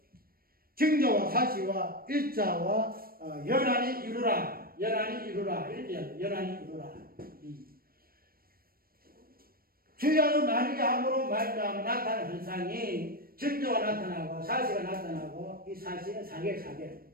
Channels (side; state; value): left; late; 0.43 ms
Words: 징조와 사시와 일자와 연한이 이루라. 이렇게 연한이 이루라. 주야로 나뉘게 함으로 말미암아 나타나는 현상이 징조가 나타나고 사시가 나타나고 이 사시는 사계